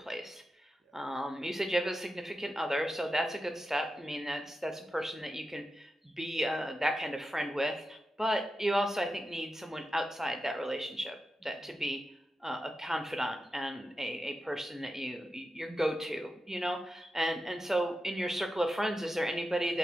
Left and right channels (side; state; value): both; normal; correlation 0.90